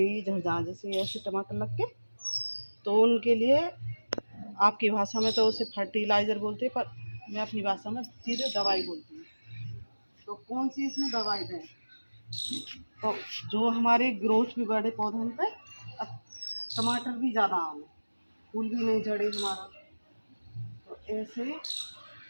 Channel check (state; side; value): inverted; both; correlation -1.00